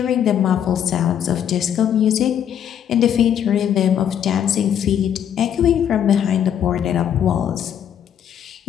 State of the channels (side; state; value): right; quieter; 9.4 dB